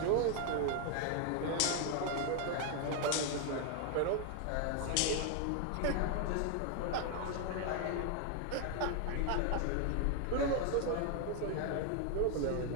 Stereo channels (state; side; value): different; both; correlation 0.00